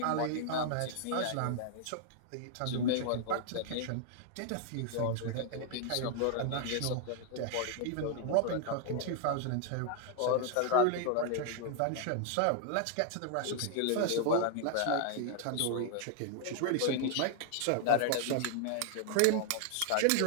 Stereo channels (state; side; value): different; both; correlation 0.00